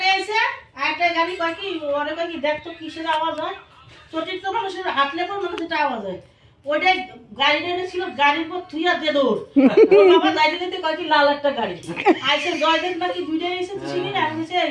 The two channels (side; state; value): both; identical; correlation 1.00